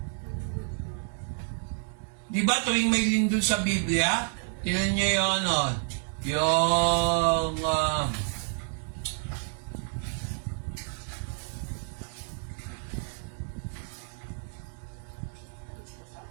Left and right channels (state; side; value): silent; left; 58 dB below the other